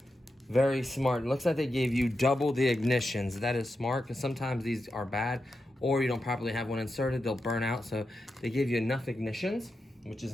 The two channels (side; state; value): both; normal; correlation 0.88